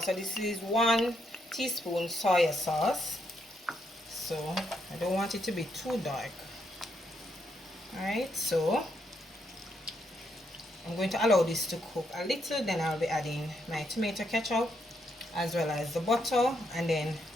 So this is 1 teaspoon soy sauce. So I don't want it to be too dark. Alright, so I'm going to allow this to cook a little, then I'll be adding my tomato ketchup as well as the butter, and then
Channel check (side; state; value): both; normal; correlation 0.78